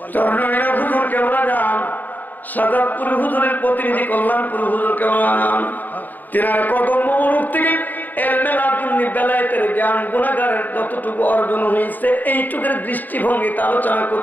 চরণে হুজুর কেবলা যান, সাজাদপুর হুজুরের প্রতিনিধি কল্যাণপুর হুজুর কেবলা যান, তিনার কদম মুবারক থেকে ইলমে লাদুন্নি বেলায়েতের জ্ঞান গুনাহগারের যতটুকু অর্জন হয়েছে এইটুকুর দৃষ্টিভঙ্গিতে আলোচনা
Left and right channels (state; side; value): late; right; 0.086 ms